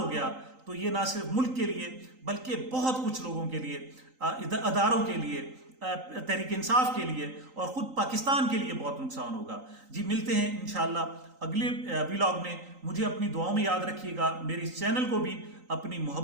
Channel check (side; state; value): left; late; 3.9 ms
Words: गया तो ये ना सिर्फ मुल्क के लिए बल्कि बहुत कुछ लोगों के लिए, अदारों के लिए, तहरीक इंसाफ के लिए और ख़ुद पाकिस्तान के लिए बहुत नुकसान होगा। जी मिलते हैं इंशाअल्लाह अगले व्लॉग में। मुझे अपनी दुआओं में याद रखिएगा, मेरे इस चैनल को भी अपनी